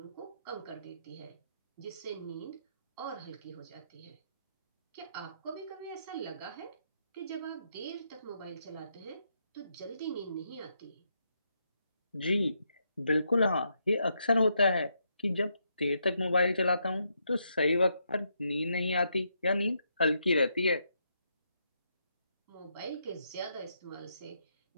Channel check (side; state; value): both; inverted; correlation -0.79